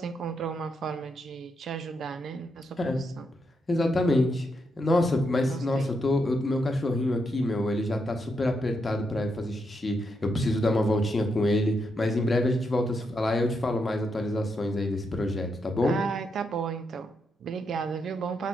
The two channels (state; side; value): normal; both; correlation 0.81